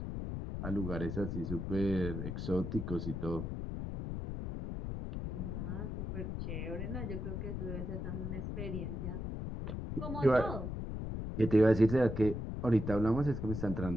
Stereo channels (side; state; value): left; noise; rumble, 4 dB below the sound